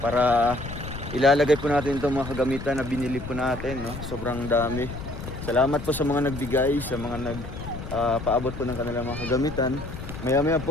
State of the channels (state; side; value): noise; left; rumble, 9 dB below the sound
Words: ilalagay po natin itong mga kagamitan na binili po natin, no? Sobrang dami. Salamat po sa mga nagbigay, sa mga paabot po ng kanilang mga kagamitan. Maya-maya